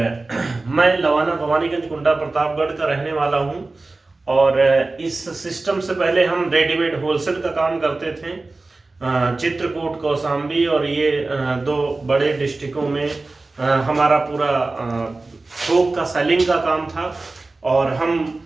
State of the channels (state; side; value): quieter; left; 3.3 dB